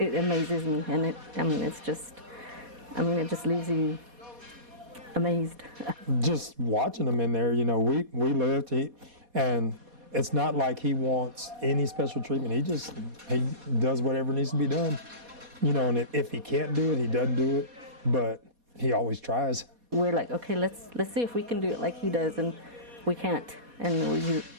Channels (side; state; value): left; late; 4.2 ms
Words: amazes me, and it just leaves you amazed. Just watching him in there, you know, we lived, and it's not like he wants any special treatment. He does whatever needs to be done, you know, and if he can't do it, he doesn't do it, but he always tries. We're like, okay, let's see if we can do it like he does, and we can't. And